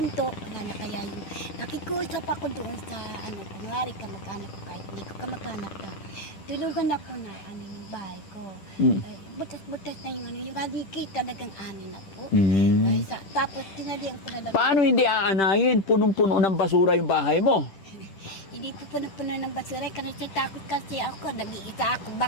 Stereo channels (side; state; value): right; late; 10 ms